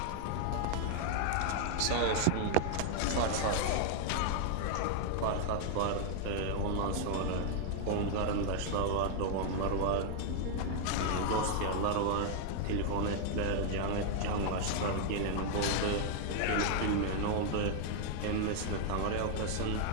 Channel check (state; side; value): different; both; correlation 0.00